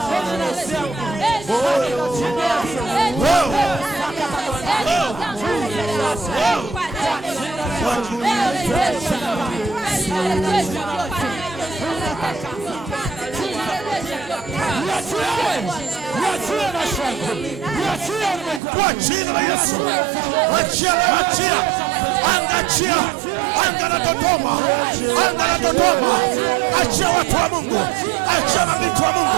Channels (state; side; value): drops out; left; at 18.6 s